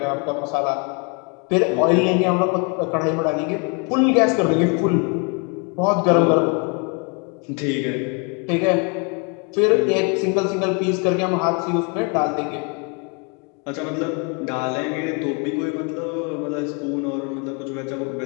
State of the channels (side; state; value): right; quieter; 34.3 dB